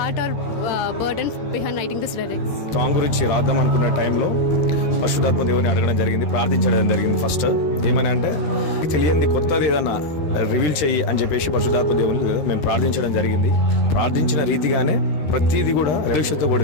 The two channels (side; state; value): right; late; 13 ms